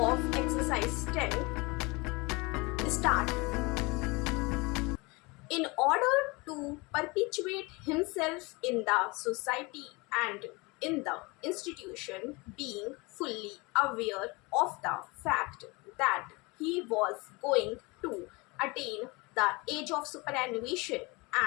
exercise 10 start. In order to perpetuate himself in the society and in the institution, being fully aware of the fact that he was going to attain the age of superannuation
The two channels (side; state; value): right; quieter; 25.8 dB